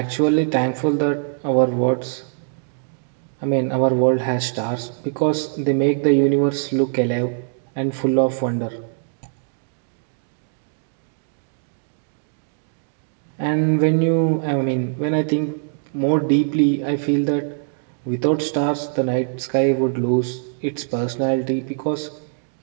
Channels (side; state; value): left; silent; digital silence